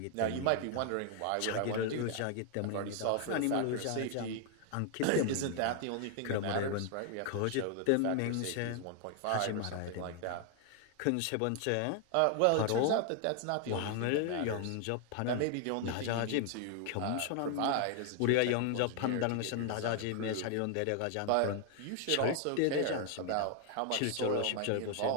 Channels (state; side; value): different; both; correlation 0.00